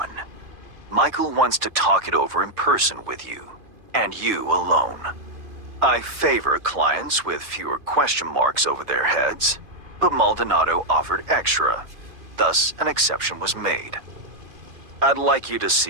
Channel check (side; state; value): left; late; 2.5 ms